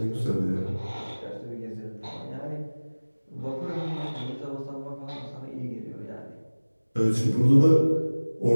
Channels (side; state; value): both; inverted; correlation -1.00